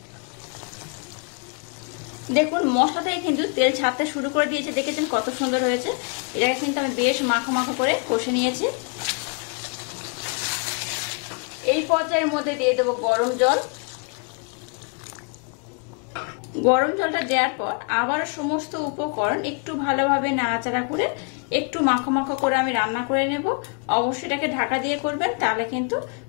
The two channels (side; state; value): right; quieter; 38.9 dB